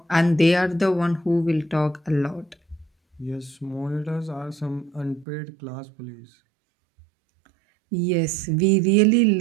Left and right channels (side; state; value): left; drops out; at 5.2 s